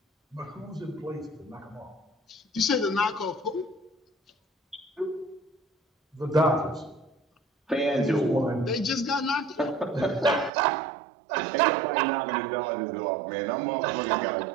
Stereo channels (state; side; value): drops out; left; at 10.5 s